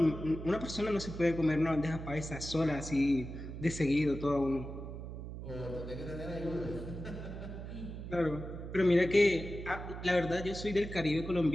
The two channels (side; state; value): right; noise; hum, 9 dB below the sound